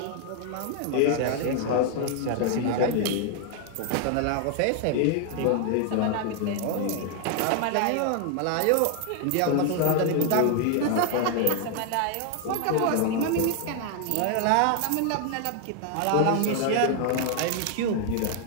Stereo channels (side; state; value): both; different; correlation 0.00